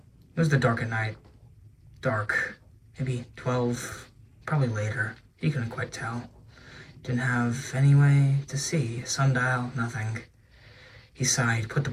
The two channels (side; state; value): both; identical; correlation 1.00